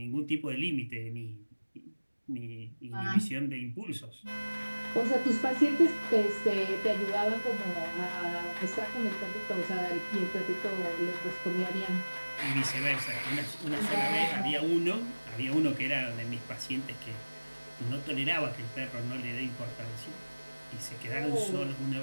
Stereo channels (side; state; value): both; inverted; correlation -1.00